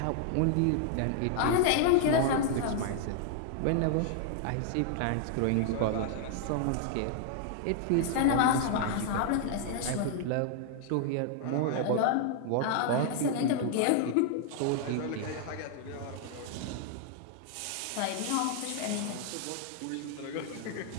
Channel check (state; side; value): different; both; correlation 0.00